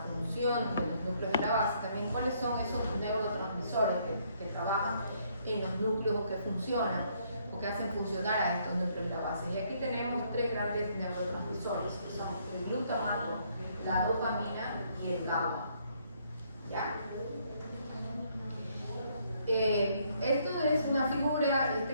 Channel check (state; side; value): inverted; both; correlation -0.69